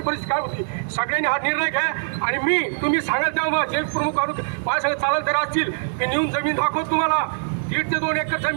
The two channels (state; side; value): silent; left; digital silence